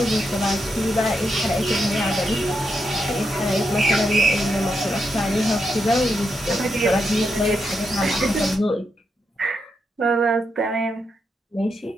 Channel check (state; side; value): normal; both; correlation 0.83